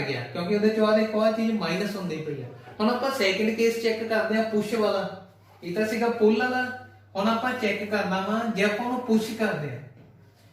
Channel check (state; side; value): identical; both; correlation 1.00